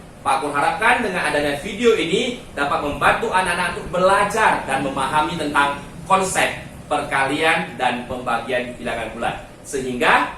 Pak Kur harapkan dengan adanya video ini dapat membantu anak-anak untuk belajar dan memahami tentang konsep perkalian dan pembagian bilangan bulat, sehingga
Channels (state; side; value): identical; both; correlation 1.00